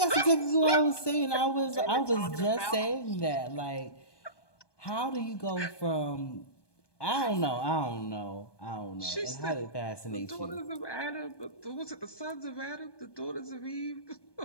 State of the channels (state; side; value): late; right; 1.2 ms